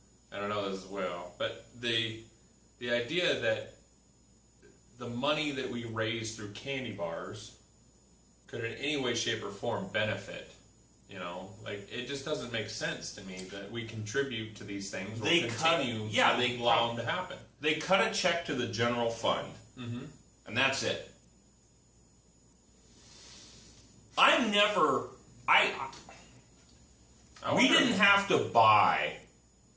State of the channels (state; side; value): identical; both; correlation 1.00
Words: I don't know this as well, but the idea that the money that we raise through candy bars could in any way, shape, or form benefit, it just doesn't make sense to me that we contribute to these things or continue to allow them to happen. They cut a check to the general fund, and that's it. We didn't have to buy,